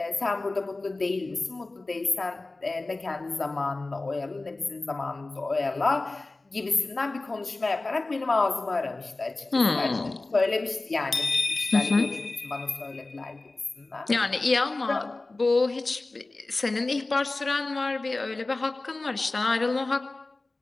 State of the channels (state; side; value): quieter; right; 3.2 dB